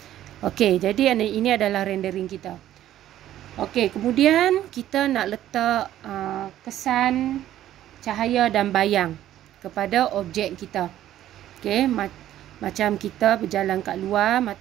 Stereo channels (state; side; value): quieter; left; 12.6 dB